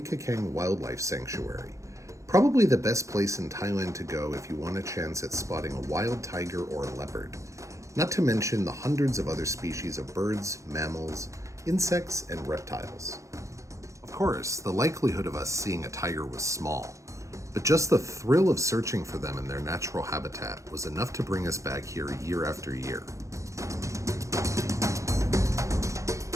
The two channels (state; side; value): late; left; 0.15 ms